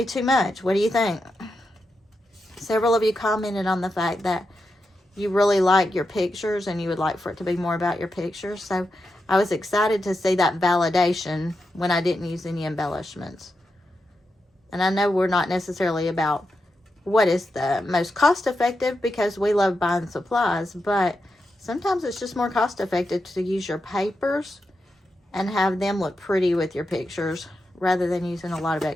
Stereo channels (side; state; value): both; normal; correlation 0.87